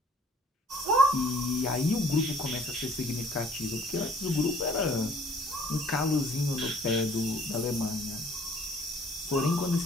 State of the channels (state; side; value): normal; both; correlation 0.57